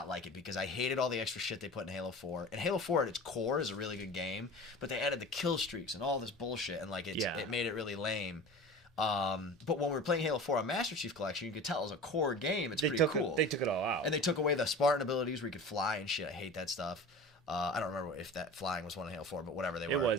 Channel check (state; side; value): normal; both; correlation 0.36